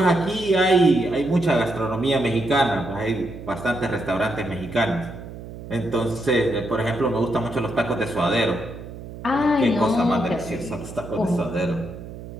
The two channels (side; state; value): right; noise; hum, 13 dB below the sound